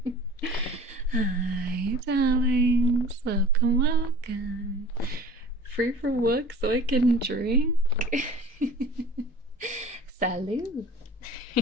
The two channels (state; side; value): normal; both; correlation 0.43